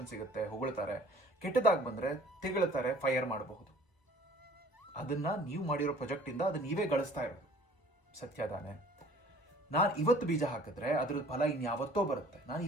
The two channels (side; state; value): right; late; 1.1 ms